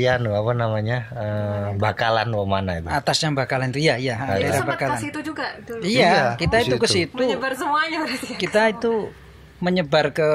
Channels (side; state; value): both; identical; correlation 1.00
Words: Bakalan mana itu? Atasnya Bakalan itu ya. Daerah Bakalan. Ke situ juga dulu. Iya, kita itu ke situ. Menyebar semuanya berarti. Kita itu menyebar ke